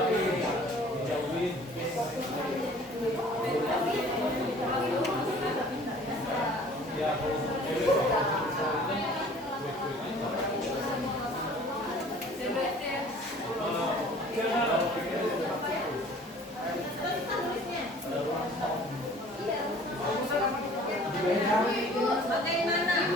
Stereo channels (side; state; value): both; normal; correlation 0.50